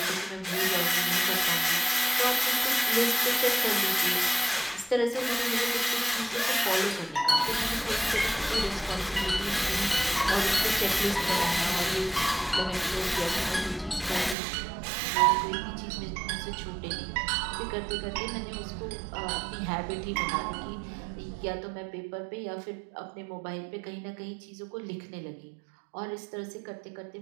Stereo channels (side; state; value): left; drops out; at 14.4 s